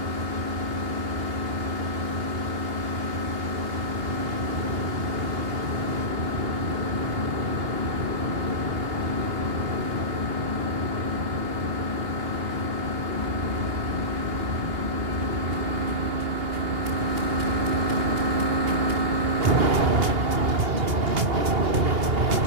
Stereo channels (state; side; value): late; left; 2.8 ms